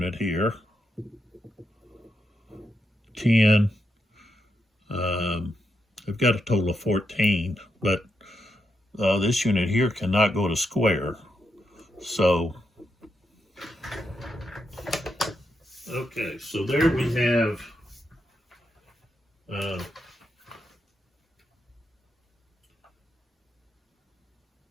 here. 10. They've got a total of 14, but this unit here cannot go to square. So, okay, so there we have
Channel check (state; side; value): normal; both; correlation 0.83